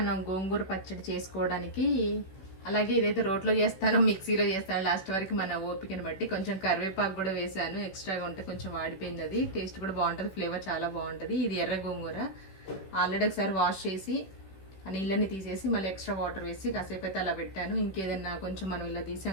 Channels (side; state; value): right; late; 16 ms